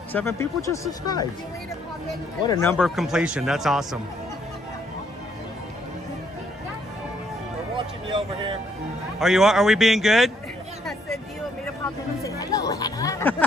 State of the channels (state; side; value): normal; both; correlation 0.70